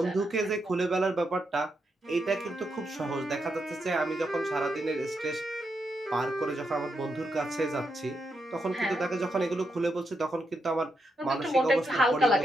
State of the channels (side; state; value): both; normal; correlation 0.83